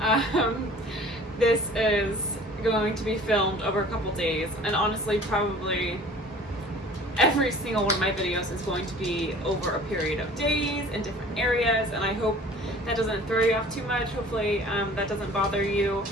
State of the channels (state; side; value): normal; both; correlation 0.47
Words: This is going to be filmed over a couple days, and honestly probably every single one of my videos is going to be over a period of days in different areas, and I hope that doesn't throw you off too much. Hopefully that doesn't bother you.